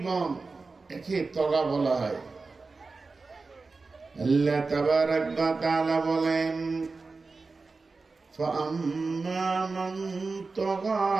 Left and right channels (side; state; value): left; quieter; 4.0 dB